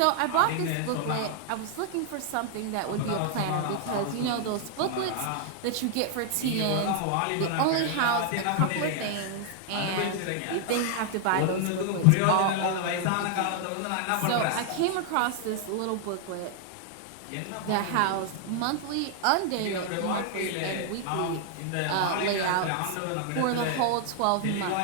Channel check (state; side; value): different; both; correlation 0.00